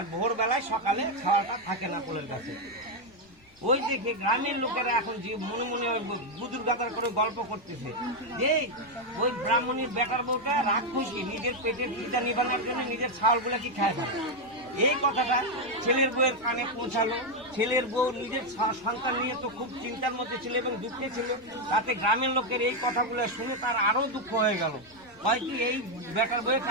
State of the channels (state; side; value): normal; both; correlation 0.03